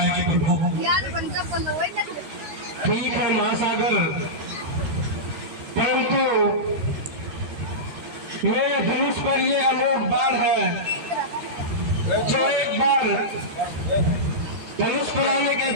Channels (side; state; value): left; late; 13 ms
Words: प्रभु, ठीक है महासागर, परंतु मेरे धनुष पर ये अलोक बाण है, जो एक बार धनुष पर आने के